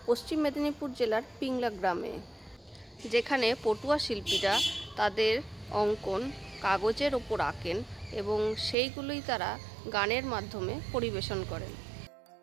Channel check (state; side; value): drops out; left; at 8.8 s